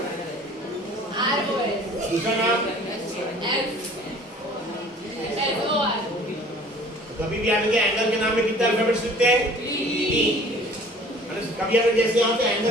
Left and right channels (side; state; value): both; normal; correlation 0.49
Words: ROS दूसरा नाम SOR कभी भी आगे एंगल के नाम में कितने अल्फाबेट्स लिखते हैं तीन कभी अगर जैसे यहाँ पे